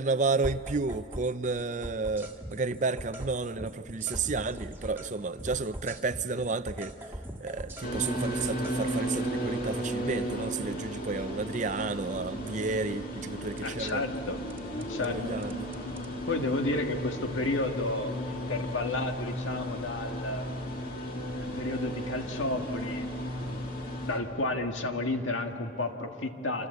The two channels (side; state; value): both; normal; correlation 0.27